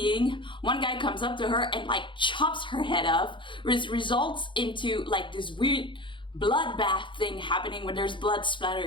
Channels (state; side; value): late; right; 0.24 ms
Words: One guy comes up to her and like chops her head off, which results into like this weird bloodbath thing happening where there's blood